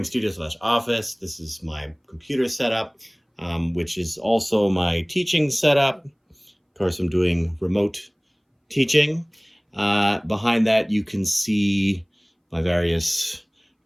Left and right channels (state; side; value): identical; both; correlation 1.00